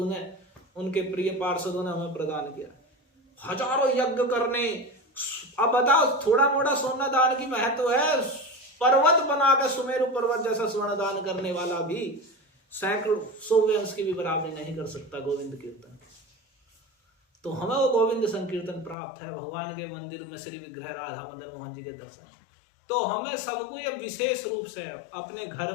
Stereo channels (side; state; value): right; drops out; at 18.9 s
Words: ने, उनके प्रिय पार्षदों ने हमें प्रदान किया। हजारों यज्ञ करने, अब बताओ थोड़ा मोड़ा सोना दान की महत्व है, पर्वत बना के सुमेरु पर्वत जैसा स्वर्ण दान करने वाला भी सैकड़ों 100 अंश की भी बराबरी नहीं कर सकता गोविंद कीर्तन। तो हमें वो गोविंद संकीर्तन प्राप्त है, भगवान के मंदिर में श्री विग्रह राधा मदन मोहन जी के दर्शन। तो हमें सबको ये विशेष रूप से अपने घर